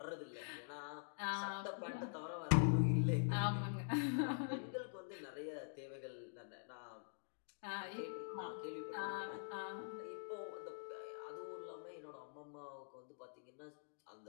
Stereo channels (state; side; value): silent; right; digital silence